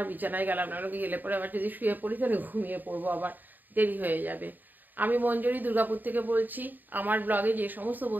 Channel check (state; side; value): late; left; 0.088 ms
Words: বিছানায় গেলাম না, গেলে পরে আবার যদি শুয়ে পড়ি তাহলে ঘুমিয়ে পড়বো, আবার দেরি হয়ে যাবে। আমি মঞ্জরি দুর্গাপুর থেকে বলছি। আমার ব্লগে যে সমস্ত